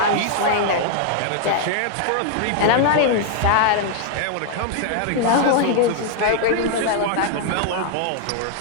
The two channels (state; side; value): different; both; correlation 0.00